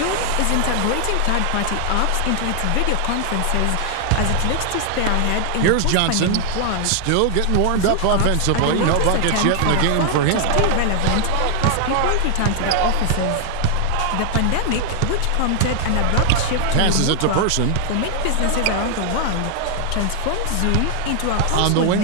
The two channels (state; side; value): different; both; correlation 0.00